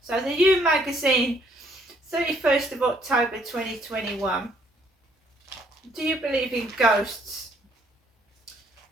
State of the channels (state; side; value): normal; both; correlation 0.66